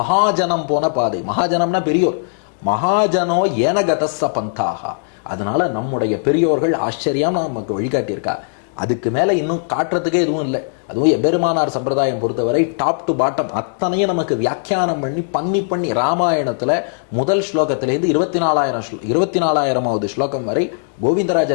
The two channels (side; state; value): right; silent; digital silence